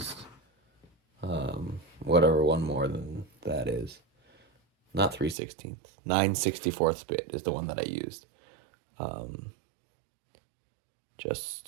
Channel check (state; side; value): drops out; left; at 5.4 s